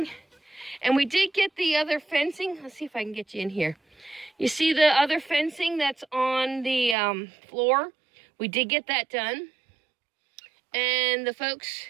And we did get the other fencing. Let's see if I can get you in here. You see the other fencing that's on the floor? We did get that done. And the folks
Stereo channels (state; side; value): drops out; left; at 7.0 s